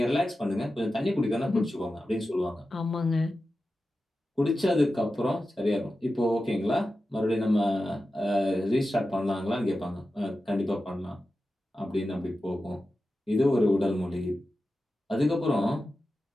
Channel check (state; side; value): normal; both; correlation 0.93